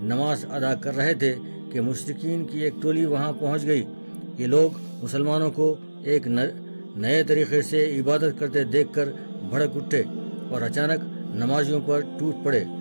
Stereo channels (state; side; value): inverted; both; correlation -1.00